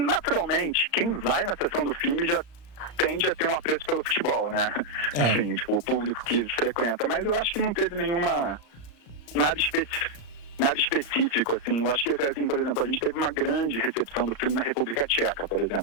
quem vai na sessão do filme já tende a ter um apreço pelo futebol, né? Assim, tipo, o público que frequenta. Mas eu acho que não teve nada específico, assim. Eu acho que, assim, por exemplo, a gente teve uma grande recepção do filme na República Tcheca, por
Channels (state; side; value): late; right; 35 ms